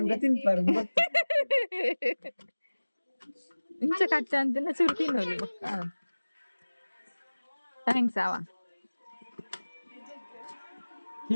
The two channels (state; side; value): inverted; both; correlation -1.00